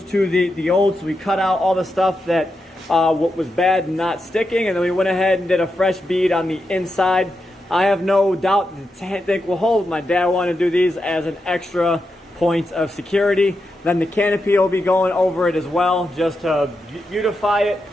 to the old. So we cut out all the stuff that what was bad and not sticking, and then we went ahead and did a fresh bead on the inside. I have no doubt the tank will hold. My dad wanted to do these as an extra point of security. Then the canopy will be going over it as well, just to beautify it,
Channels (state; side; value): normal; both; correlation 0.87